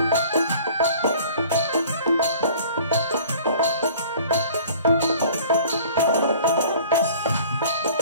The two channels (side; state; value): both; inverted; correlation -0.49